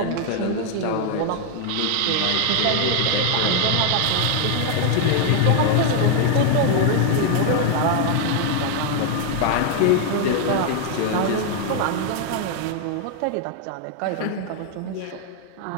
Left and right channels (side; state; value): both; different; correlation 0.00